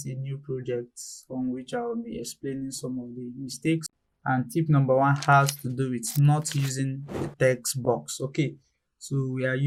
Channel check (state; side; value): identical; both; correlation 1.00